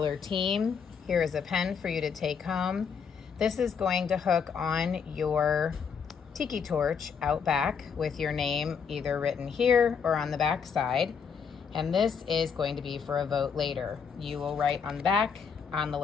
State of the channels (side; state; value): right; quieter; 6.4 dB